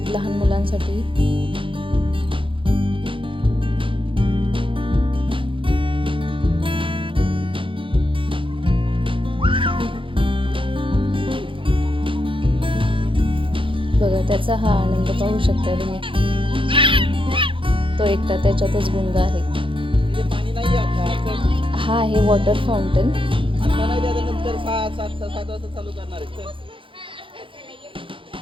लहान मुलांसाठी। बघा, त्याचा हा आनंद पाहू शकता तुम्ही। तो एकटा त्याच्यातच गुंग आहे। हा आहे वॉटर फाउंटन।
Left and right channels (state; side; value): late; left; 0.25 ms